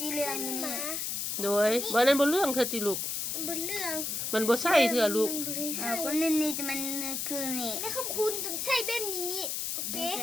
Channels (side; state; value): left; noise; hiss, 2 dB below the sound